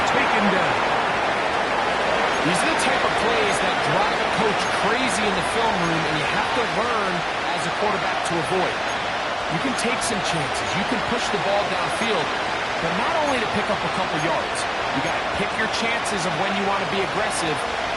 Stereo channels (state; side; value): identical; both; correlation 1.00